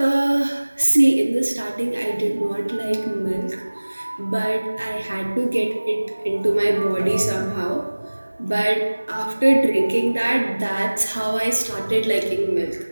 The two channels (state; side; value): inverted; both; correlation -1.00